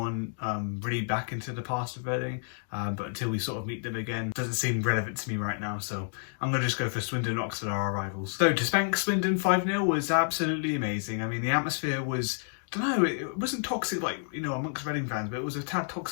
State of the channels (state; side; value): silent; right; digital silence